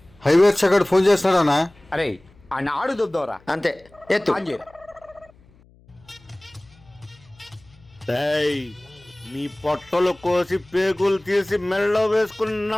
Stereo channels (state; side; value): noise; left; hum, 28 dB below the sound